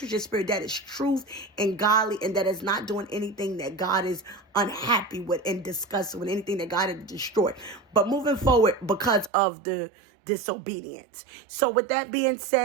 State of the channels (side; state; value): left; drops out; at 9.3 s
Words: your spirit, that is truth and godly, and that is not doing anything that God is unhappy with and disgusted with, anything that God has destroyed. But moving forward because of the disobedience. So with that being